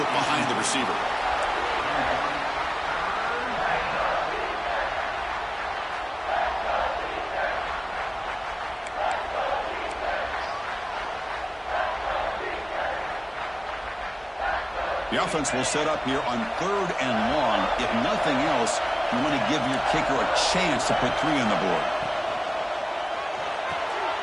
it behind the receiver. The offense will set up here on 3rd and long. If nothing else, you want to give your kicker a chance to put 3 on the board.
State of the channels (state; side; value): identical; both; correlation 1.00